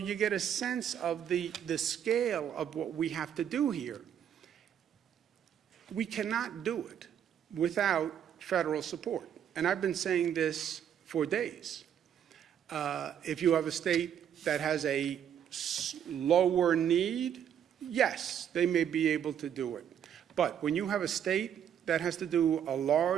get a sense of the scale of what we have to do here. We cannot do it without federal support. And I've been saying this for days. If you have a state that has a lower need, yes, they may be able to do it. But when you have a state that has to do a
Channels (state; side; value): quieter; left; 9.2 dB